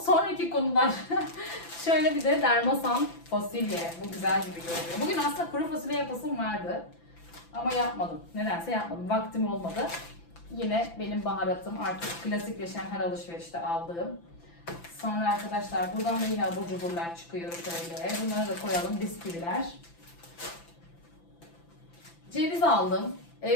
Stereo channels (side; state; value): right; late; 5.9 ms